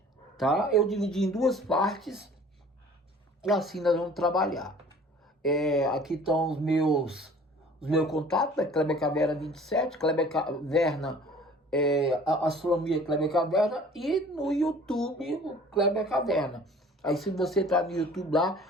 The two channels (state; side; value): normal; both; correlation 0.49